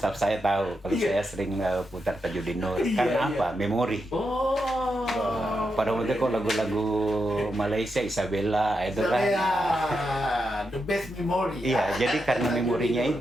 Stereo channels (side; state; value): both; normal; correlation 0.85